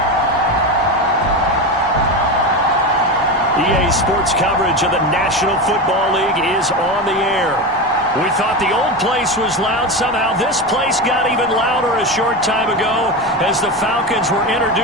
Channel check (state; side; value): normal; both; correlation 0.20